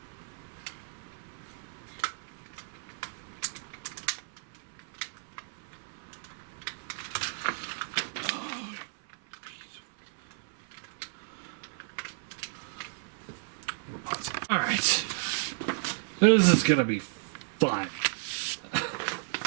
Alright. This is gonna be fun.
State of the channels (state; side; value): silent; left; 56 dB below the other